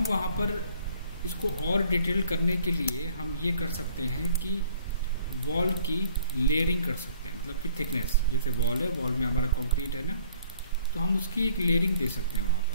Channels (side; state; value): both; inverted; correlation -0.58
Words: वहाँ पर इसको और डिटेल करने के लिए हम ये कर सकते हैं कि वॉल की लेयरिंग कर सकते हैं, मतलब कि थिकनेस। जैसे वॉल है, वॉल में हमारा कंक्रीट है ना, तो हम उसकी एक लेयरिंग दे सकते हैं वहाँ